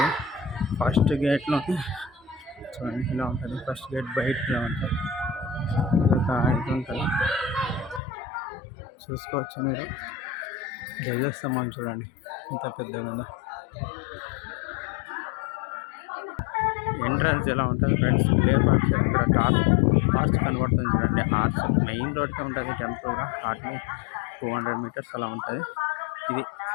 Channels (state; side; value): drops out; right; at 8.0 s